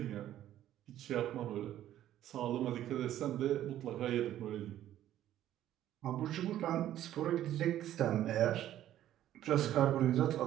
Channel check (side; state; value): left; quieter; 12.4 dB